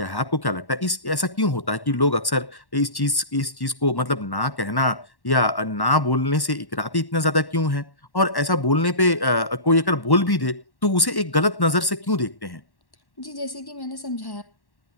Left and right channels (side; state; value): right; late; 1.1 ms